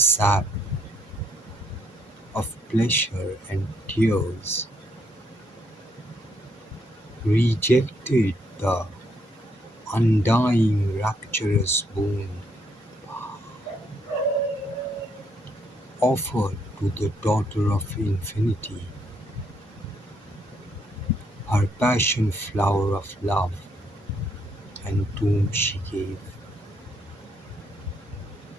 of pleasure and tears. Rejected the undying rapturous boon offered to the daughter of infinity, her passion flower of love, and tomb she gave,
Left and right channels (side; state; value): both; normal; correlation 0.72